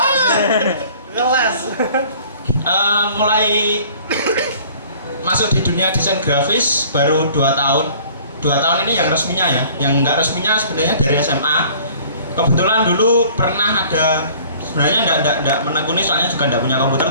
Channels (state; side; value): inverted; both; correlation -0.51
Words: Mulai masuk di dunia desain grafis baru 2 tahun. 2 tahun ini yang resminya ya. Yang nggak resminya sebenarnya dari SMA. Kebetulan dulu pernah ada, sebenarnya enggak menekuni soalnya juga enggak punya komputer,